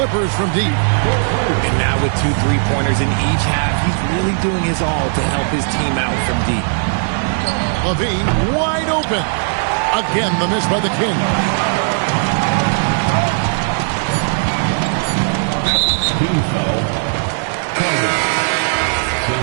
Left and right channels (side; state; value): left; silent; 65 dB below the other